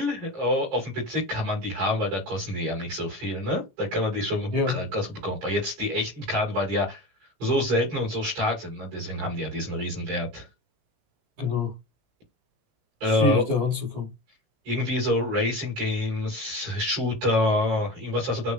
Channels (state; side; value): late; left; 17 ms